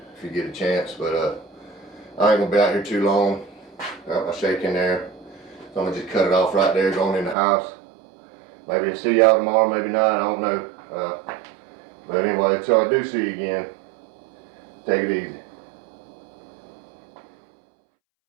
get a chance. But I ain't gonna be out here too long. Got my shake in there. So I'm gonna just cut it off right there, going in the house. Maybe I'll see y'all tomorrow, maybe not, I don't know. But anyway, until I do see you again, take it easy.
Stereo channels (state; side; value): drops out; left; at 7.4 s